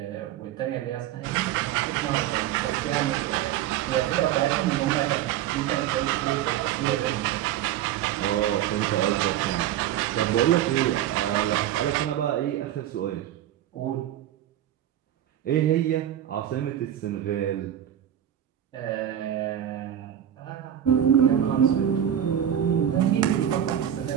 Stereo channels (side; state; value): left; quieter; 10.9 dB